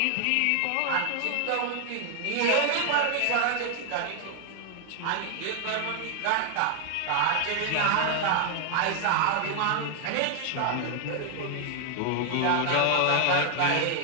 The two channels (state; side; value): different; both; correlation 0.00